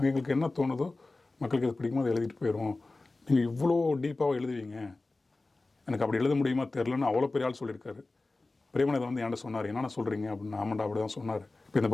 எங்களுக்கு என்ன தோணுதோ மக்களுக்கு இது பிடிக்குமோ அதை எழுதிட்டு போயிடுவோம், நீங்கள் இவ்வளோ டீப்பாக எழுதுவீங்க, எனக்கு அப்படி எழுத முடியுமா தெரிலன்னு அவ்வளோ பெரிய ஆள் சொல்லியிருக்காரு. பிரேமன் இதை வந்து என்கிட்ட சொன்னார், என்னென்ன சொல்கிறீங்க அப்படின்னு. ஆமாண்டா அப்படி தான் சொன்னார். இப்போ இந்த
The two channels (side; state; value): right; quieter; 3.2 dB